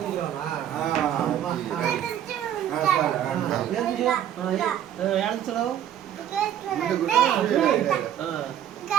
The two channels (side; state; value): left; quieter; 10.6 dB